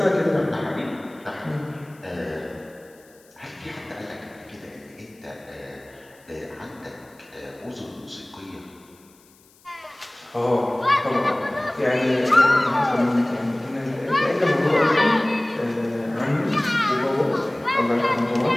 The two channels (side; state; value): left; noise; hiss, 29 dB below the sound